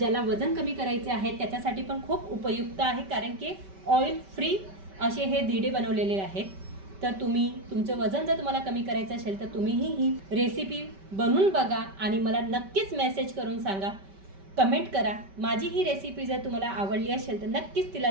वजन कमी करायचे आहे त्याच्यासाठी पण खूप उपयुक्त आहे, कारण की ऑइल फ्री असे हे धिरडे बनवलेले आहेत। तर तुम्ही तुमचं वजन जर तुम्हाला कमी करायचं असेल तर तुम्हीही ही रेसिपी बनवून बघा आणि मला नक्कीच मेसेज करून सांगा, कमेंट करा। माझी ही रेसिपी जर तुम्हाला आवडली असेल तर नक्कीच तिला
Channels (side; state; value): left; late; 5.2 ms